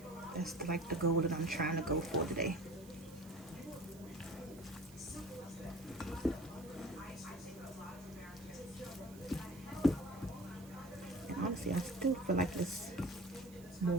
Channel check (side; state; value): right; noise; hiss, 21 dB below the sound